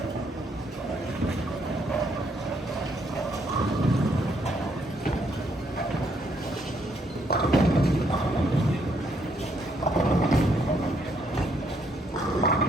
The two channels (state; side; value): normal; both; correlation 0.72